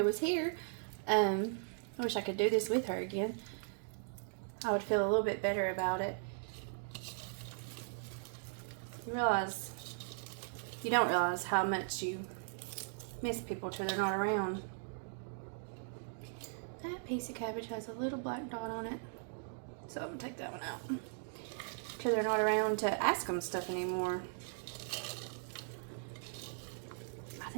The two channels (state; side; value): silent; left; digital silence